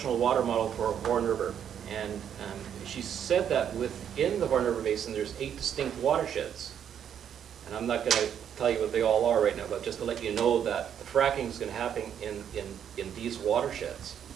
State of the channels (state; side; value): quieter; left; 8.9 dB